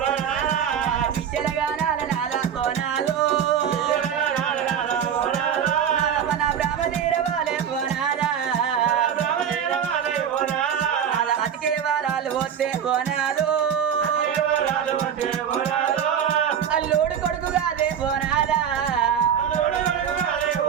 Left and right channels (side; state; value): left; quieter; 8.4 dB